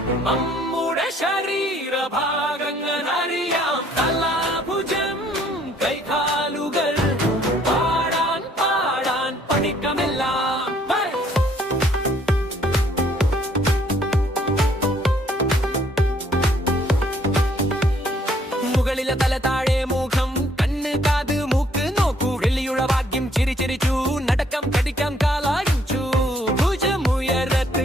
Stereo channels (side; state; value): both; normal; correlation 0.64